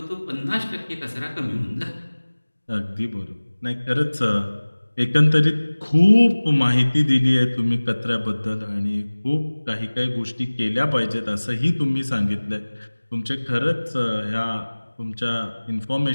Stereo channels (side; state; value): both; inverted; correlation -1.00